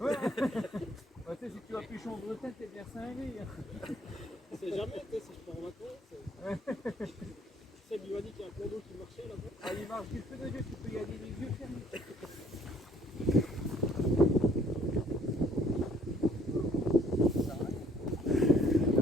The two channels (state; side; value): normal; both; correlation 0.61